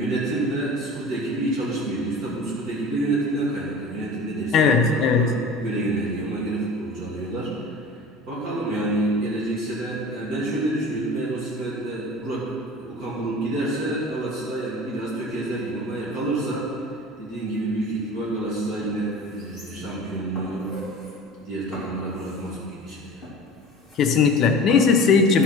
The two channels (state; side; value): normal; both; correlation 0.38